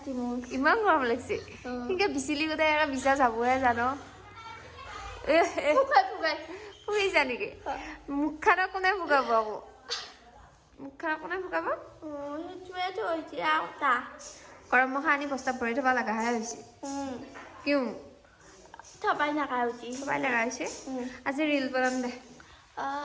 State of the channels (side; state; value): both; identical; correlation 1.00